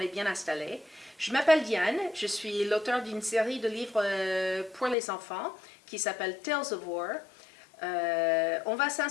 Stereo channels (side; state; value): right; drops out; at 5.0 s